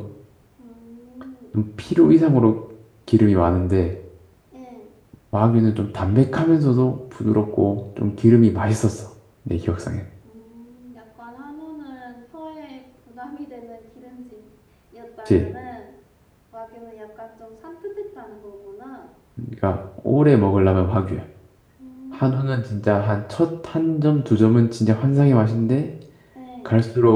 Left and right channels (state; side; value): identical; both; correlation 1.00